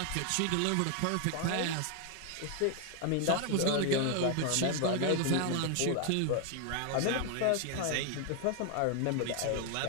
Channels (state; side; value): different; both; correlation 0.01